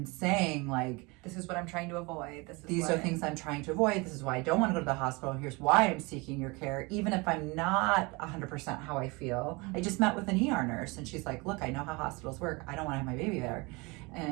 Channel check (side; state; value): left; quieter; 26.5 dB